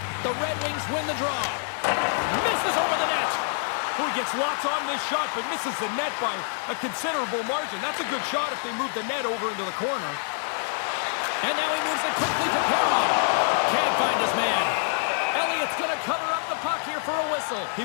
The Red Wings win the draw. Misses over the net. Oh, he gets lots on this shot, but misses the net by a considerable margin. That's a good shot if they move the net over into the corner. And now he moves it quickly to Perron. Can't find his man. Elliott's going to cover up the puck here for a whistle. He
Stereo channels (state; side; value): silent; right; 61 dB below the other